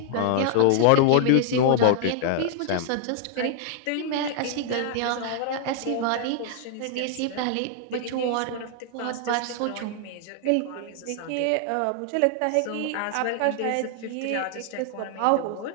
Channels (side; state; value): both; different; correlation -0.01